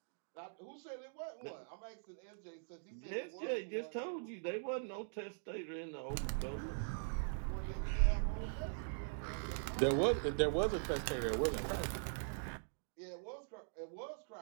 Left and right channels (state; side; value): silent; left; digital silence